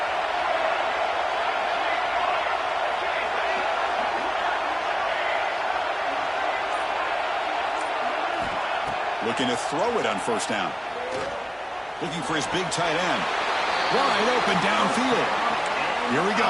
Looking to throw it on first down. Looking for his big tight end. Wide open downfield. Here we go.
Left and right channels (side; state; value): both; identical; correlation 1.00